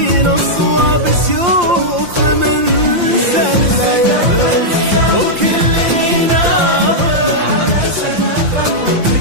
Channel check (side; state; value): left; late; 5.7 ms